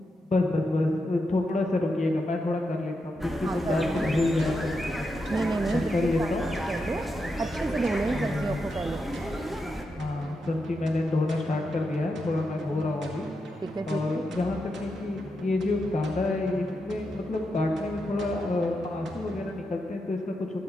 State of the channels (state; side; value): normal; both; correlation 0.85